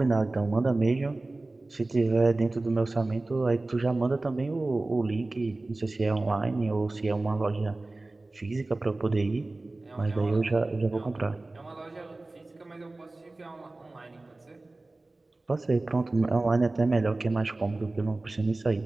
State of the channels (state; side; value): quieter; left; 3.0 dB